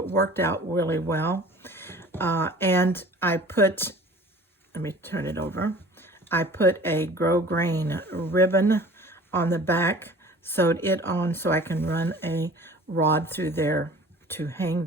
worked out really well. And I put, let me turn it over. I put a grosgrain ribbon on the back, sewed it on so I can run a rod through there to hang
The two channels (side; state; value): both; normal; correlation 0.45